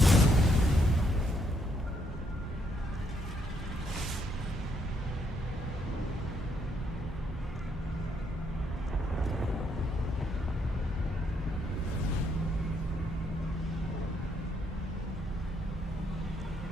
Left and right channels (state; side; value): normal; both; correlation 0.74